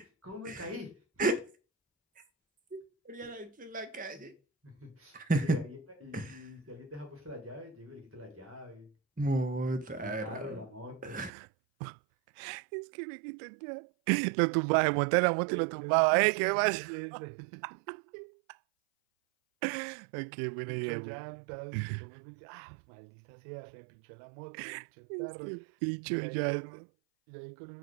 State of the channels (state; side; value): drops out; left; at 11.3 s